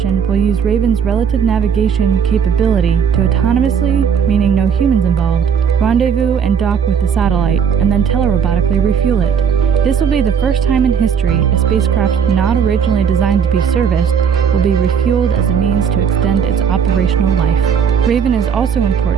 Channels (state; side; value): quieter; left; 7.2 dB